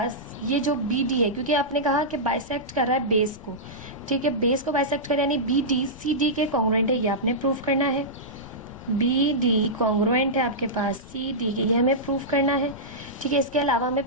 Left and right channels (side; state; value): left; noise; rumble, 20 dB below the sound